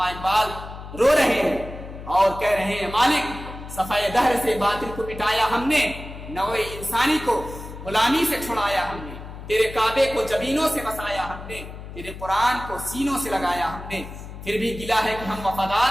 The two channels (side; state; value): left; noise; hum, 12 dB below the sound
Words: اقبال رو رہے ہیں اور کہہ رہے ہیں، مالک صفحہ دہر سے باطل کو مٹایا ہم نے، نوع انسانی کو غلامی سے چھڑایا ہم نے، تیرے کعبے کو جبینوں سے بسایا ہم نے، تیرے قرآن کو سینوں سے لگایا ہم نے، پھر بھی گلا ہے کہ ہم وفادار